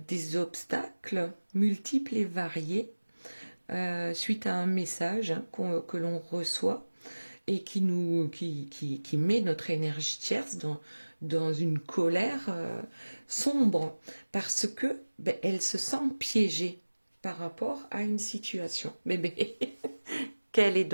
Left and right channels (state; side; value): inverted; both; correlation -1.00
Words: obstacles multiples et variés suite à un message, hein, que l'on reçoit et qui met notre énergie tierce dans une colère sombre parce que elle se sent piégée par rapport à une situation. Mais quelle est